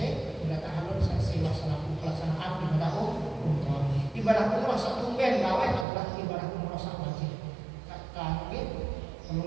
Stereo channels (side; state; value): left; drops out; at 5.9 s